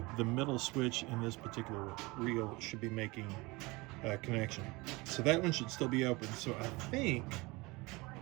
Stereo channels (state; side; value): quieter; left; 23.8 dB